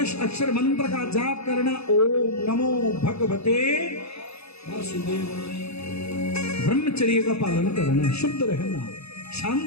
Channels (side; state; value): right; late; 0.79 ms